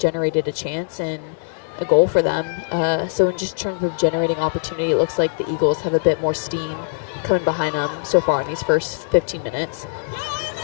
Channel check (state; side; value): silent; right; digital silence